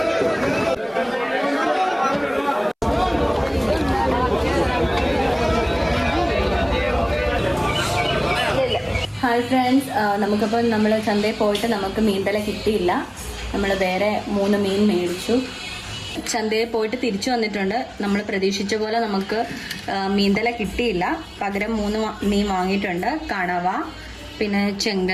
ഹായ് ഫ്രണ്ട്സ്, നമുക്കിപ്പോൾ നമ്മൾ ചന്തയിൽ പോയിട്ട് നമുക്ക് മീന്തല കിട്ടിയില്ല. നമ്മൾ വേറെ 3 മീൻ മേടിച്ചു. ചന്തയിൽ പോയിട്ട് തിരിച്ചു വന്നിട്ടുണ്ട്. നമ്മൾ പ്രതീക്ഷിച്ച പോലെ നമുക്ക് മീന്തല കിട്ടിയില്ല. പകരം 3 മീൻ വാങ്ങിയിട്ടുണ്ട്. കണവ, പിന്നെ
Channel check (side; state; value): both; identical; correlation 1.00